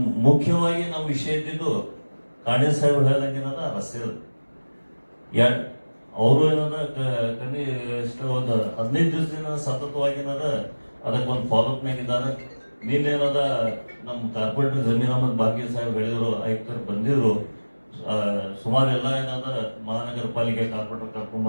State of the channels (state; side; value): inverted; both; correlation -1.00